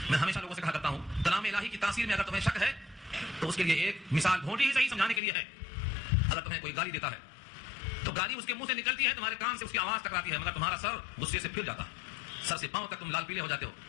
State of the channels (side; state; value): right; drops out; at 5.2 s